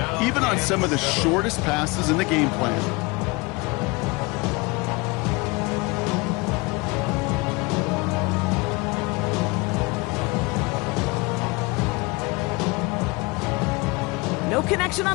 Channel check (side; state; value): right; quieter; 25.8 dB